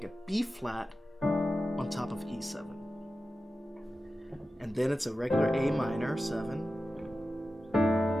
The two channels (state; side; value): normal; both; correlation 0.93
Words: a B flat on top of E7. And then it's a regular A minor 7